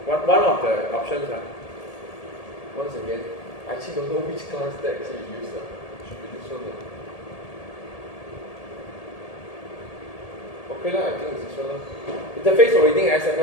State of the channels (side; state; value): right; late; 1.8 ms